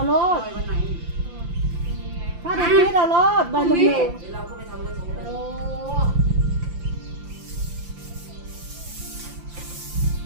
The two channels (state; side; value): late; left; 5.8 ms